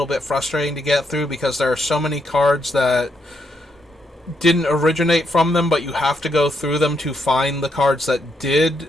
bit frustrating to get through because there are so many cards that didn't originate from them, but you have to go through them to find the cards that did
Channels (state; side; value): normal; both; correlation 0.78